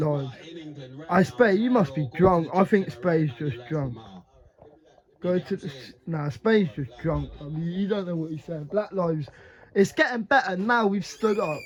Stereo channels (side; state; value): both; identical; correlation 1.00